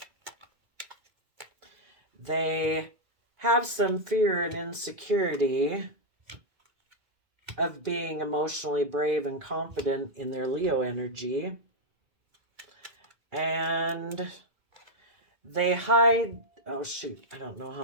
They have some fear and insecurity of being emotionally brave and confident in their Leo energy. And they hide, oh shoot, I don't know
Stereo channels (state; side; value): late; left; 2.0 ms